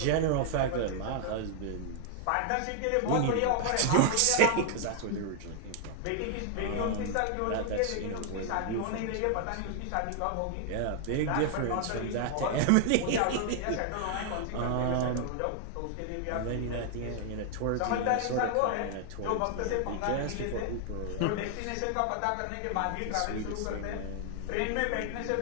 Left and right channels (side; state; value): both; different; correlation 0.00